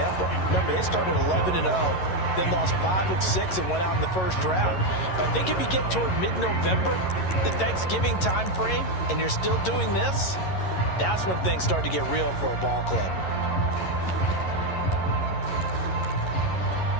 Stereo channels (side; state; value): right; late; 11 ms